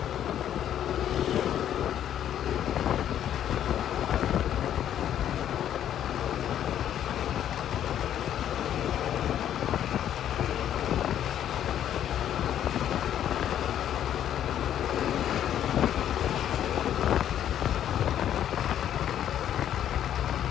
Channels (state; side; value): quieter; right; 10.5 dB